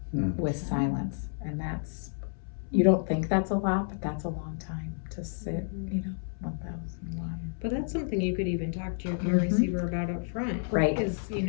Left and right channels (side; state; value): right; silent; 58 dB below the other